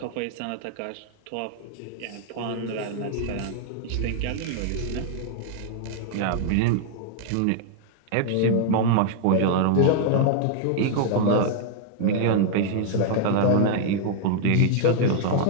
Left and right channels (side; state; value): both; different; correlation 0.00